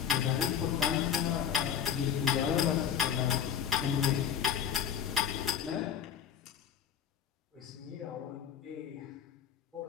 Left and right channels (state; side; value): quieter; right; 8.7 dB